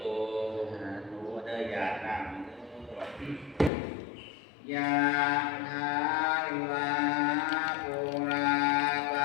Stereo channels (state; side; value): drops out; right; at 3.7 s